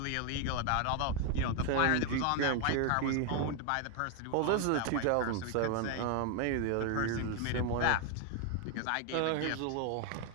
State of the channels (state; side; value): different; both; correlation 0.01